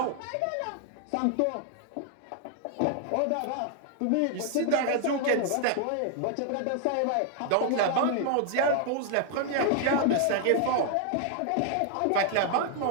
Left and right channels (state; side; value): different; both; correlation 0.00